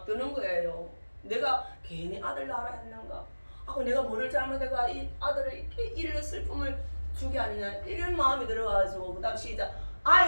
드는 거예요. 내가 괜히 아들 낳으라 했는가? 내가 뭐를 잘못해가 이 아들을 이렇게 이런 슬픔을 주게 아니냐 이런 마음이 들어가지고 그 다음 시작.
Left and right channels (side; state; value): both; inverted; correlation -1.00